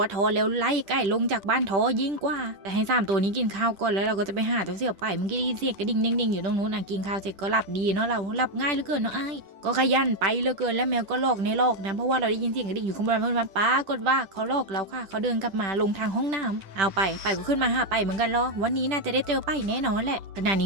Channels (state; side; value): late; left; 10 ms